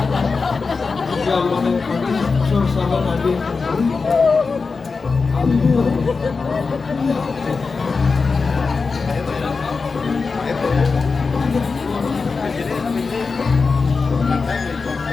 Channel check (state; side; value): quieter; right; 4.5 dB